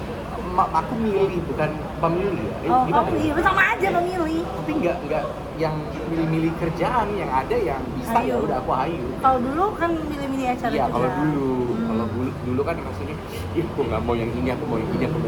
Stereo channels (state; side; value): identical; both; correlation 1.00